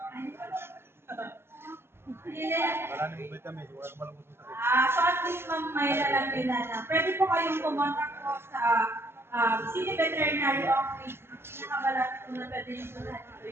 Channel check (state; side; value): late; left; 0.12 ms